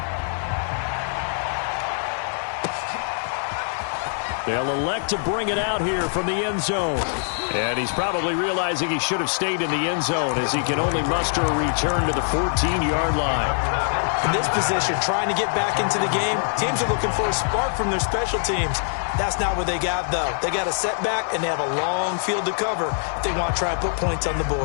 They'll elect to bring it out here from the end zone. And he's probably realizing he should have stayed in the end zone as he can only muster a return to the 14-yard line. In this position, trying to get back into the game, teams are looking for a spark from their special teams. That's not what they got, though. They got a setback, and they have a long field to cover if they want to try and put points on the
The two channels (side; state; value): right; silent; 62 dB below the other